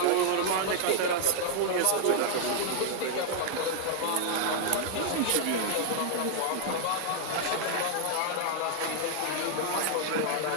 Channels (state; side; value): different; both; correlation 0.00